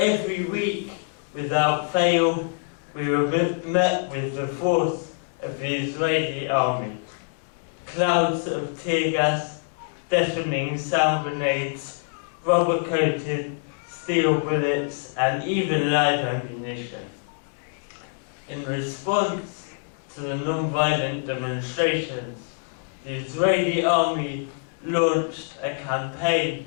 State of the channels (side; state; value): right; silent; 61 dB below the other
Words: week without fail we were met with the force of the Israeli army. Clouds of tear gas, deafening sound grenades, rubber-coated steel bullets, and even live ammunition. In response to the non-violent demonstrations, the Israeli army launched a campaign